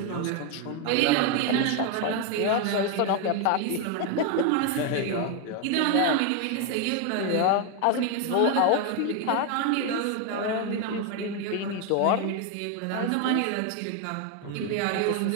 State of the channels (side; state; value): both; different; correlation 0.01